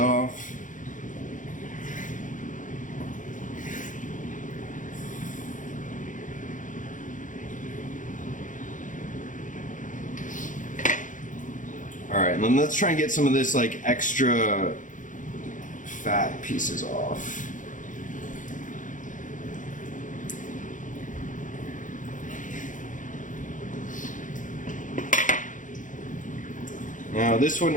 All right, and then let's try and get some of this like extra fat pieces off. Now this one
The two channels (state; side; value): late; right; 0.37 ms